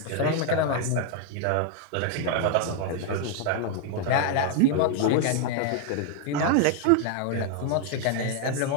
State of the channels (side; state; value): both; different; correlation 0.00